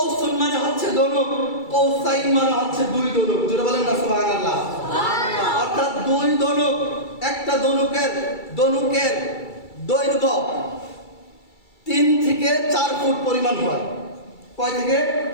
মানে হচ্ছে দনুক, কৌসাইন মানে হচ্ছে দুই দনুক। জোরে বলেন না সুবহানাল্লাহ। অর্থাৎ দুই দনুক, একটা দনুকের দৈর্ঘ্য 3 থেকে 4 ফুট পরিমাণ হয়। কয় থেকে?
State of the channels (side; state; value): right; late; 2.3 ms